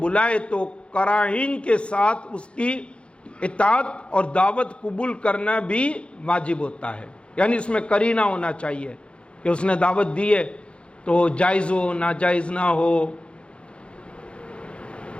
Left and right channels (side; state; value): right; late; 0.058 ms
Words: بلائے تو قرائن کے ساتھ اس کی اطاعت اور دعوت قبول کرنا بھی واجب ہوتا ہے، یعنی اس میں قرینہ ہونا چاہیے کہ اس نے دعوت دی ہے تو جائز ہو، ناجائز نہ ہو۔